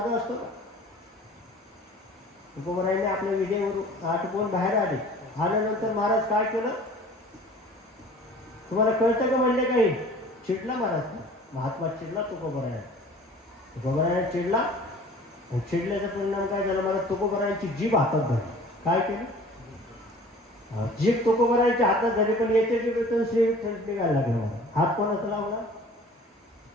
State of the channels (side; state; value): both; normal; correlation 0.47